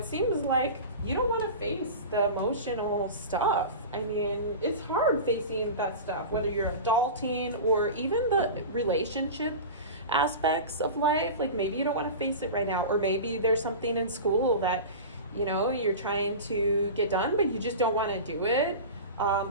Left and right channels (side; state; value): both; inverted; correlation -0.30